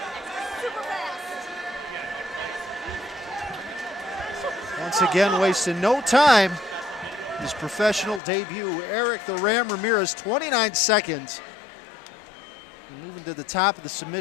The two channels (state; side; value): drops out; right; at 8.2 s